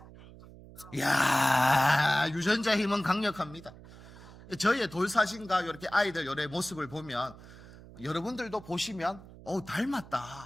이야, 유전자 힘은 강력합니다. 저희의 돌 사진과 이렇게 아이들 요래 모습을 보면 여러분들도 보시면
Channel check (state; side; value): noise; right; hum, 19 dB below the sound